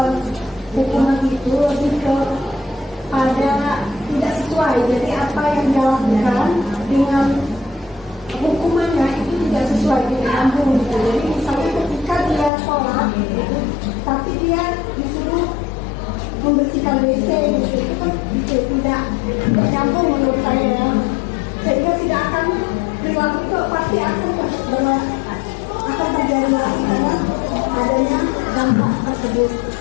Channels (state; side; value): drops out; right; at 12.5 s